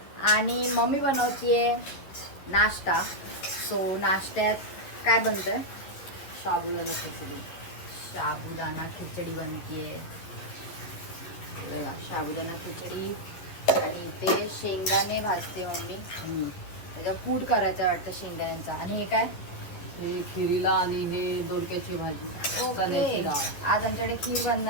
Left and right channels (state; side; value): late; right; 11 ms